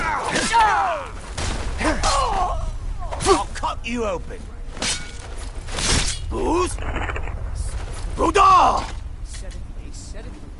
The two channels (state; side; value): identical; both; correlation 1.00